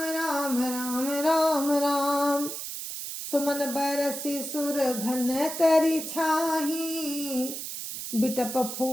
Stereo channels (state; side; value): noise; right; hiss, 7 dB below the sound